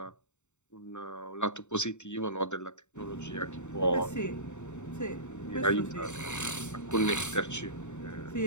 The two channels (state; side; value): late; right; 0.84 ms